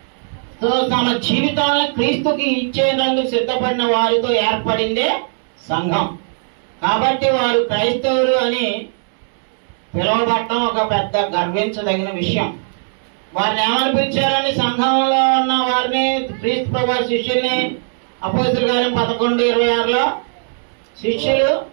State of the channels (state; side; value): silent; left; 65 dB below the other